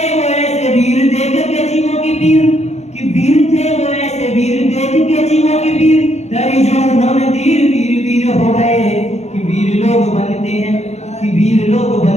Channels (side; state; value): right; late; 0.32 ms